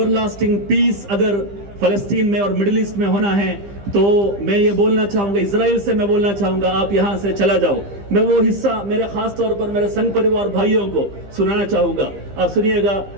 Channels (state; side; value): late; left; 15 ms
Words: لاسٹنگ پیس اگر فلسطین میں اور مڈل ایسٹ میں ہونا ہے تو میں یہ بولنا چاہوں گا، اسرائیل سے میں بولنا چاہوں گا آپ یہاں سے چلا جاؤ. میں وہ حصہ میرے خاص طور پر میرے سنگ پریوار بھائیوں کو سنانا چاہوں گا. آپ سنیے گا